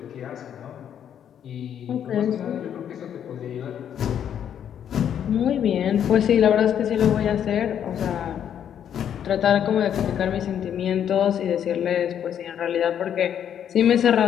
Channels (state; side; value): quieter; right; 9.2 dB